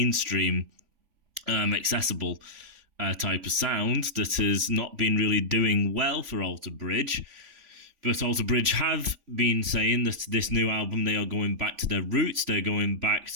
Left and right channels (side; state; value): left; late; 3.5 ms